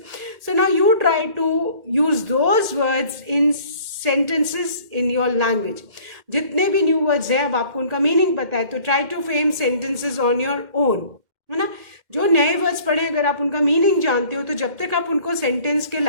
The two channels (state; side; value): late; left; 2.1 ms